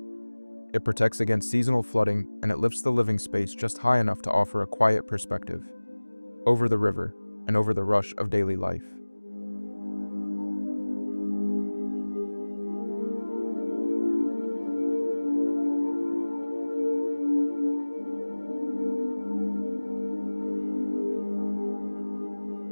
It protects against seasonal flooding, and it lifts the living space just high enough to offer a quiet perspective over the river and over the rush of daily life.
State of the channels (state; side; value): inverted; both; correlation -1.00